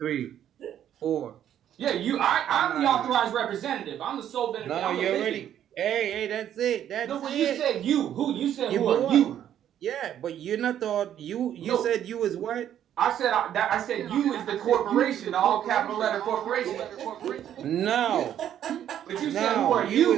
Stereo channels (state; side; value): quieter; left; 10.5 dB